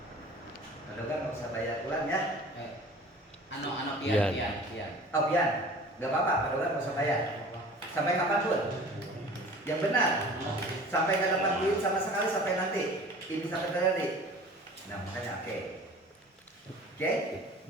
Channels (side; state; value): both; normal; correlation 0.43